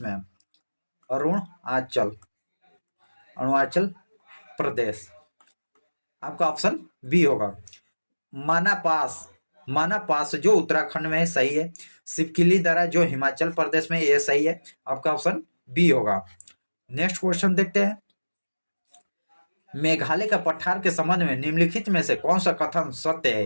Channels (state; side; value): inverted; both; correlation -1.00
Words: में है। अरुणाचल प्रदेश, आपका ऑप्शन बी होगा। माना पास जो उत्तराखंड में है, सही है। सिपकिली दरा जो हिमाचल प्रदेश में, यह सही है। आपका ऑप्शन बी होगा। नेक्स्ट क्वेश्चन देखते हैं। मेघालय का पठार के संबंध में निम्नलिखित में से कौन सा कथन सत्य